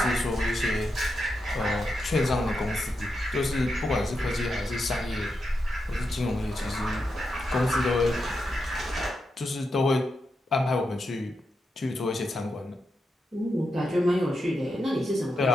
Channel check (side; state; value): both; normal; correlation 0.86